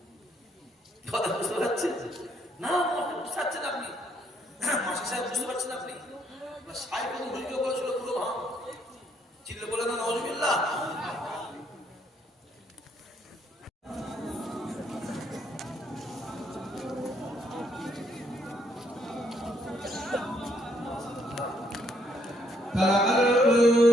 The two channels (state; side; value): normal; both; correlation 0.70